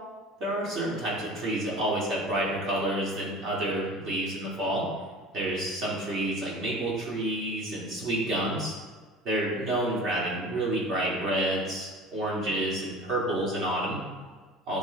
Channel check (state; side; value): normal; both; correlation 0.40